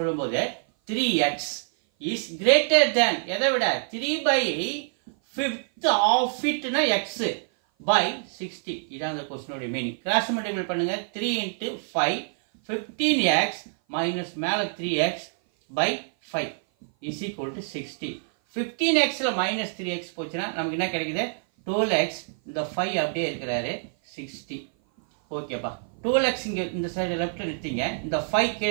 3x is greater than எதை விட 3/5 of it னா x by 60. இதான் the question ஓட மீனிங். கிராஸ் மல்டிபிள் பண்ணுங்க. 3 into 5 15x minus மேல 3x by 5 is equal to 60. 15x ல minus 3x போச்சுனா நமக்கு என்ன கிடைக்குது? 12x. இந்த 5 அப்படியே இருக்கிறாரு 60. ஓகேப்பா. 12x இங்க இந்த சைடு லெஃப்ட்ல நிறுத்திங்க. இந்த 5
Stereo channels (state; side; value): silent; left; 56 dB below the other